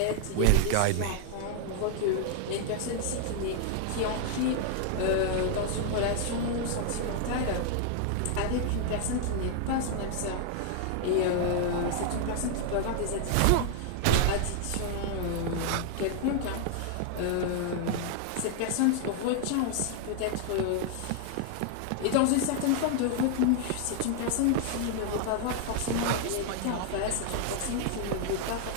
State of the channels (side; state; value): both; different; correlation 0.00